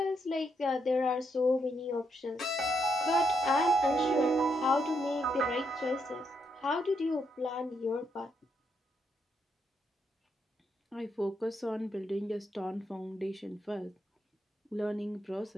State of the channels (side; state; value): both; normal; correlation 0.78